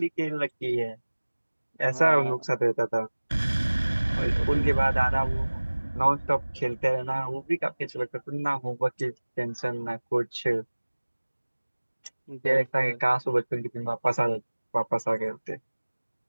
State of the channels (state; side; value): inverted; both; correlation -1.00